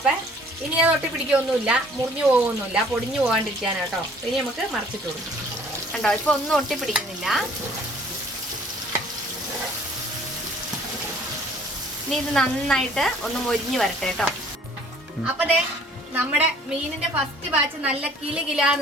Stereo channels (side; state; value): both; normal; correlation 0.55